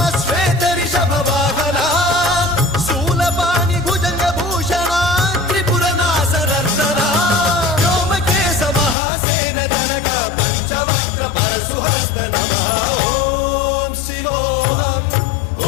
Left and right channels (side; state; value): right; drops out; at 9.0 s